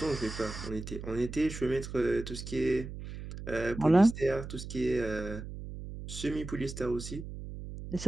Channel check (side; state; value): right; noise; hum, 9 dB below the sound